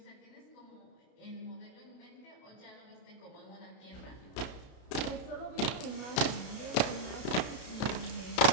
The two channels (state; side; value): late; right; 32 ms